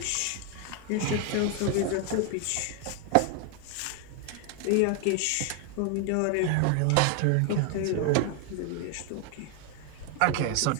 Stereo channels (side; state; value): both; different; correlation 0.00